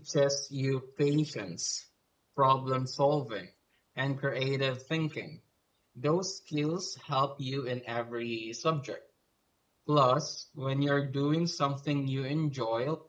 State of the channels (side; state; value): both; identical; correlation 1.00